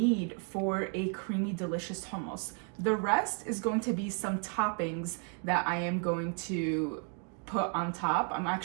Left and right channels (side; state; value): left; quieter; 37.3 dB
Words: for a creamy, delicious hummus. The rest is going to be some toppings that I am going to put on top. I'm